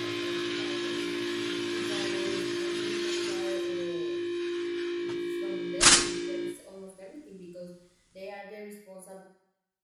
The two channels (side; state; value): both; identical; correlation 1.00